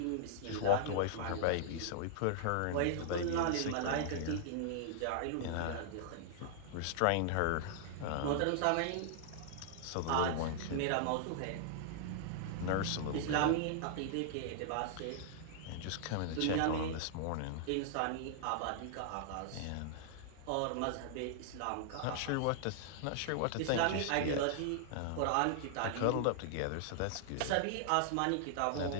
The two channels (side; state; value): both; different; correlation -0.01